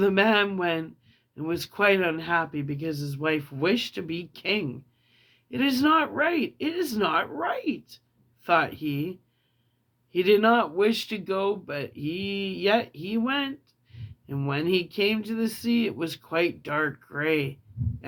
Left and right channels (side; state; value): both; identical; correlation 1.00